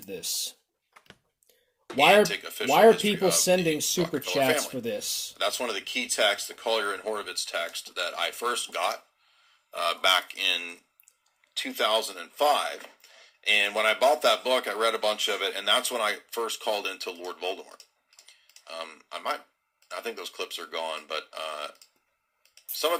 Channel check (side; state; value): both; identical; correlation 1.00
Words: this. Why are people sending super chats for this? That's one of the key texts, the Collier and Horowitz text, that I first got back in 2005. And when I bought that book, I read a bunch of it, and that's when I first called into Lord Voldemort. I think those clips are gone, but some